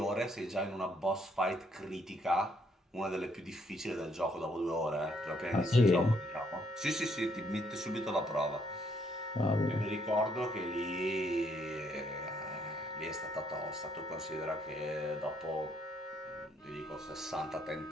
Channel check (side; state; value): both; normal; correlation 0.70